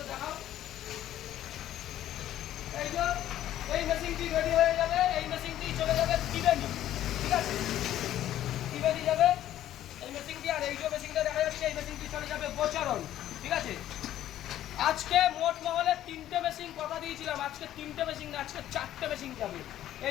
দেখাও এই যে এই মেশিনটি রেডি হয়ে যাবে এই মেশিনটি চলে যাবে টিবেনি ঠিক আছে টিবেনি যাবে এই মেশিনটি আর এই যে মেশিনটা দেখা যাচ্ছে এই মেশিনটি চলে যাবে বোচরণ ঠিক আছে আজকে মোট মহলে 3টে মেশিন কথা দিয়েছিলাম আজকে 3টে মেশিন না আজকে 4টে মেশিন যাবে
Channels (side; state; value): right; quieter; 12.5 dB